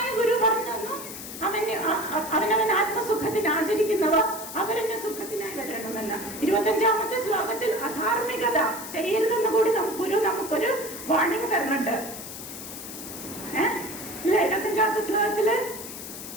ഗുരു പറഞ്ഞു തന്നു, അവനവൻ ആത്മസുഖത്തിന് ആചരിക്കുന്നവ അവരന്റെ സുഖത്തിനായി വരണമെന്ന്. 25ാമത്തെ ശ്ലോകത്തിൽ അധാർമികത ചെയ്യരുതെന്ന് കൂടി നമുക്കൊരു വാണിംഗ് തരുന്നുണ്ട്. 25ാമത്തെ ശ്ലോകത്തില്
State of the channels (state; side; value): noise; left; hiss, 10 dB below the sound